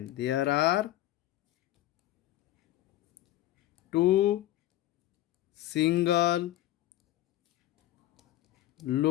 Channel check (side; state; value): right; quieter; 14.3 dB